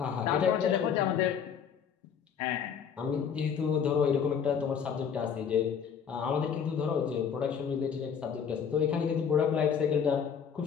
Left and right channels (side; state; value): right; quieter; 7.3 dB